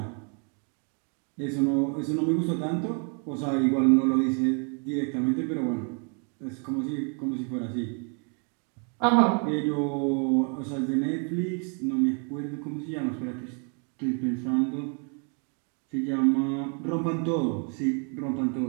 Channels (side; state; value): left; quieter; 38.6 dB